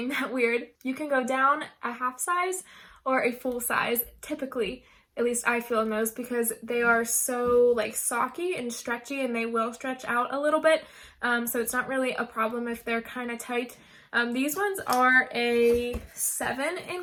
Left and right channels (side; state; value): both; identical; correlation 1.00